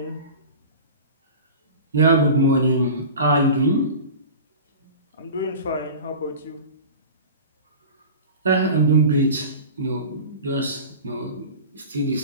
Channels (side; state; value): both; inverted; correlation -0.35